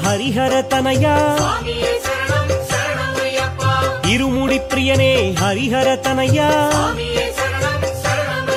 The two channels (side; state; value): both; identical; correlation 1.00